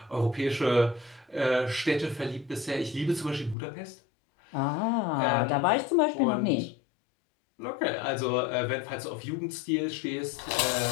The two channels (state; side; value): drops out; right; at 3.6 s